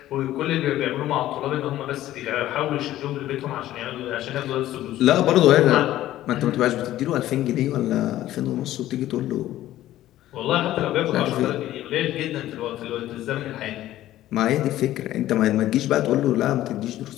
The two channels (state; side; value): quieter; right; 14.1 dB